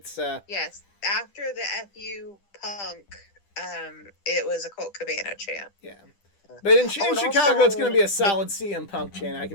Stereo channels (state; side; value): late; right; 10 ms